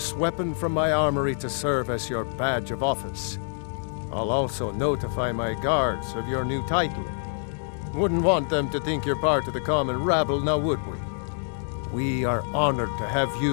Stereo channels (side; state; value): right; silent; digital silence